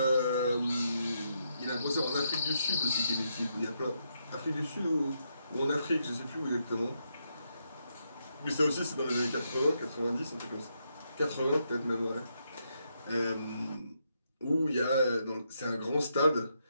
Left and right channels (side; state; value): both; inverted; correlation -0.80